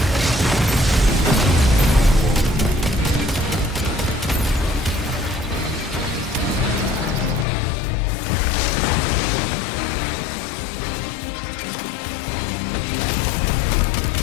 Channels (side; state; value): right; drops out; at 7.5 s